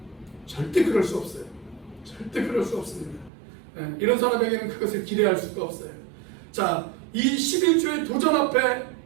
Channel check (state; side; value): drops out; left; at 3.3 s